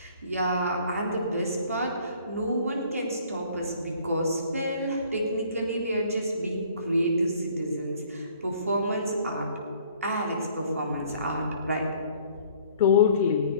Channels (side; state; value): both; inverted; correlation -0.56